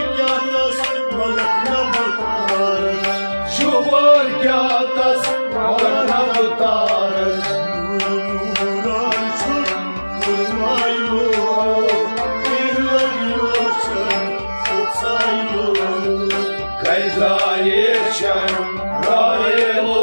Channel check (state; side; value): inverted; both; correlation -1.00